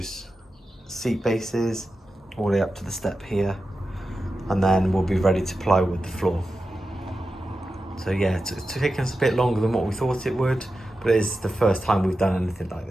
seat bases all the way up to the step here, and then we'll be ready to plywood the floor. So yeah, it's taken us a bit longer than what we thought it would, but it is the first time we've done anything like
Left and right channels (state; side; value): normal; both; correlation 0.92